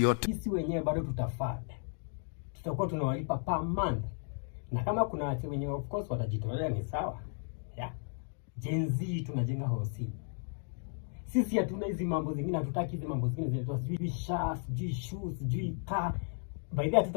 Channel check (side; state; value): right; silent; 55 dB below the other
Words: Sisi wenyewe bado tutafanya. Tutakuwa tunawalipa per month. Na kama kuna watu wenyewe of course watajitolea ni sawa. Yeah. Gen Z tunajenga hosi. Sisi hatuna hizi mambo zingine, hatutaki hizi mambo zingine zetu. Sijui shoes, sijui shoes, sijui car. By the way